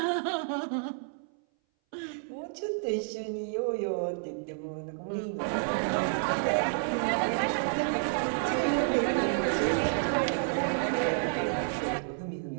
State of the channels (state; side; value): silent; left; 58 dB below the other